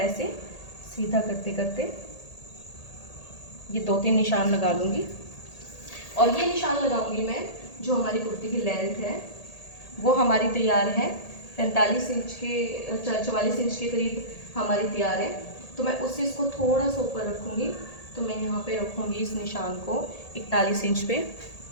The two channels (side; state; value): right; late; 1.8 ms